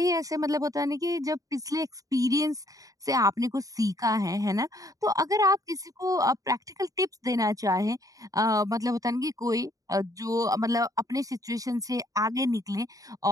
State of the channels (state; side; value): late; left; 0.17 ms